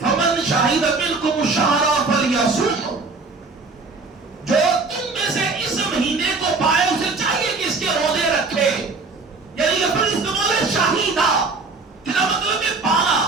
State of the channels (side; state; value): left; quieter; 3.9 dB